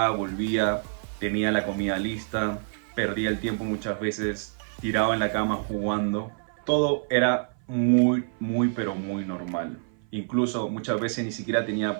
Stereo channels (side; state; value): left; silent; 56 dB below the other